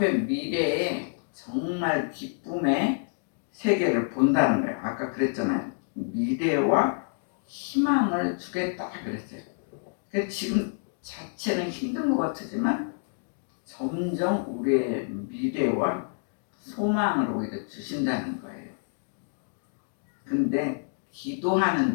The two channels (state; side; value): silent; right; digital silence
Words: 미래에 정말 기쁨의 세계를 본다는 거예요. 아까 그랬잖아요. 미래와 희망을 주겠다 그랬어요. 그래서 지금 자체는 힘든 것 같지만 점점 우리의 미래와 소망을 오히려 주신다는 거예요. 근데 기도하는